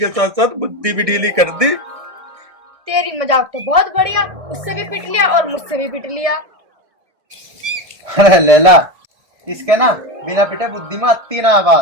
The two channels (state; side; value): late; left; 1.6 ms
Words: साथ साथ बुद्धि भी ढीली कर दी। तेरी मजाक तो बहुत बढ़िया, उससे भी पिट लिया और मुझसे भी पिट लिया। अरे लैला, इसके ना बिना पिटे बुद्धि में आती ना